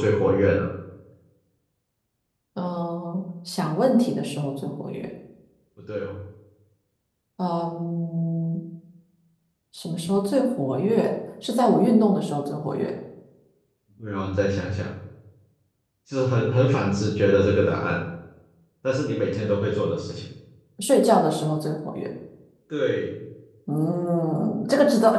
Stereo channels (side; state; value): both; identical; correlation 1.00